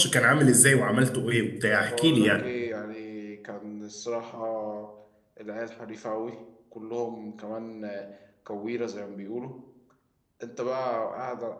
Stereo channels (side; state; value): both; identical; correlation 1.00